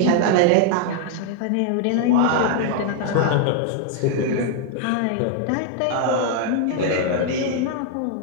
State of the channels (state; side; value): different; both; correlation 0.00